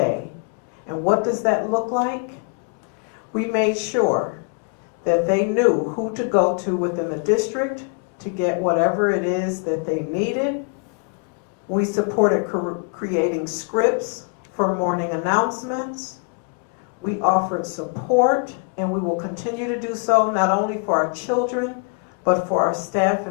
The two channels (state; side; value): quieter; right; 38.8 dB